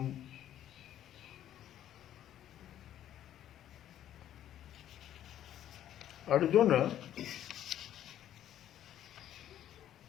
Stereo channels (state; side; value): quieter; right; 11.5 dB